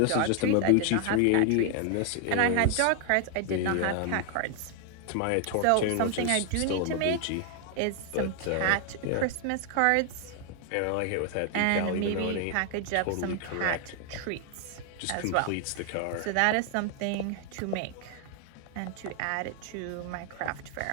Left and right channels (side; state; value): both; different; correlation 0.00